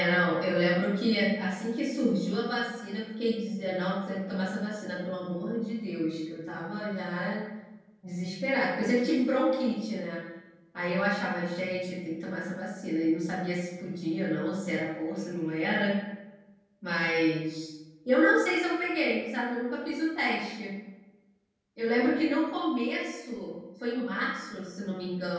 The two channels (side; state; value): both; identical; correlation 1.00